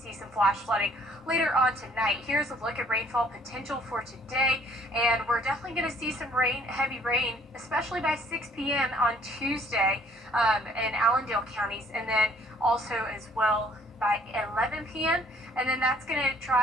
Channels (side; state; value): both; normal; correlation 0.60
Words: some flash flooding later on tonight. Here's a look at rainfall potential for today, and we're definitely going to see some rain, heavy rain, especially by 6 p.m. on Tuesday in Allendale counties, and then also as well by 11 p.m. And then that's going to